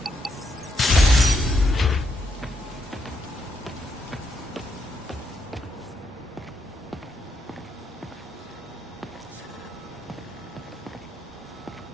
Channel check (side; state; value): both; normal; correlation 0.78